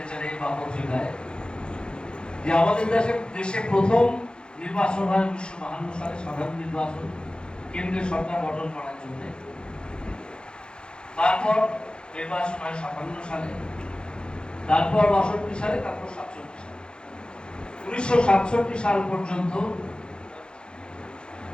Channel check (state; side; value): late; right; 0.050 ms